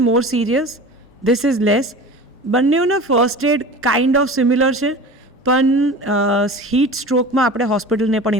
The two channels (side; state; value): both; normal; correlation 0.36